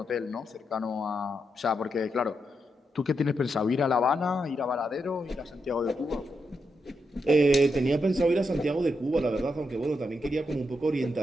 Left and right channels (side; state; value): both; normal; correlation 0.83